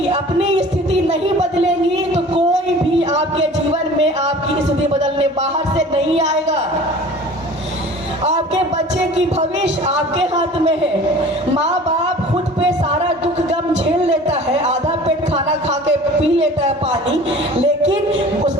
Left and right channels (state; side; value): normal; both; correlation 0.44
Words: अपनी स्थिति नहीं बदलेंगी, तो कोई भी आपके जीवन में आपकी स्थिति बदलने बाहर से नहीं आएगा। आपके बच्चे की भविष्य आपके हाथ में है। माँ बाप खुद पे सारा दुख गम झेल लेता है, आधा पेट खाना खा के पी लेता है पानी, लेकिन